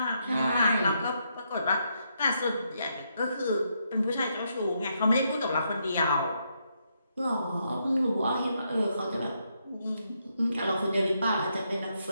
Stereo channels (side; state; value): both; inverted; correlation -0.78